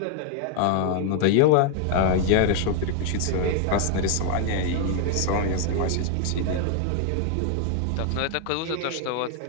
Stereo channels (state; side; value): different; both; correlation 0.00